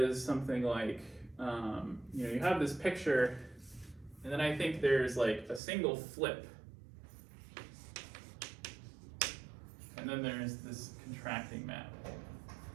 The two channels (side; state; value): left; drops out; at 5.6 s